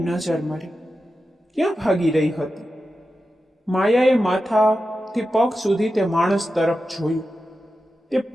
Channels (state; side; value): normal; both; correlation 0.91